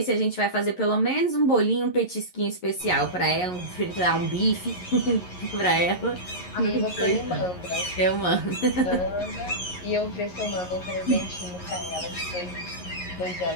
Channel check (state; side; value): late; right; 11 ms